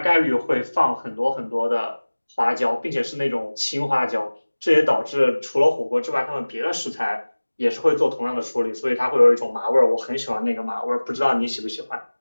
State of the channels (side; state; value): both; inverted; correlation -1.00